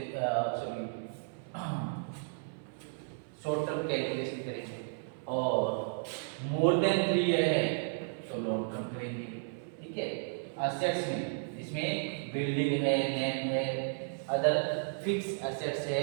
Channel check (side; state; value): left; silent; 55 dB below the other